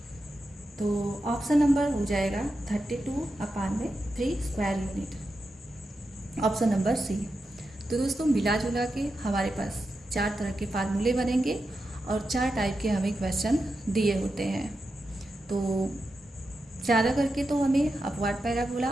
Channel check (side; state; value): both; normal; correlation 0.89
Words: तो ऑप्शन नंबर हो जाएगा 32/3 square unit, option number C. तो दोस्तों मिला जुला के हमारे पास 4 तरह के फार्मूले बनेंगे और 4 टाइप के हमें क्वेश्चन दिए होते हैं। तो ज़्यादा करके तो हमें अपवर्ड पैराबोला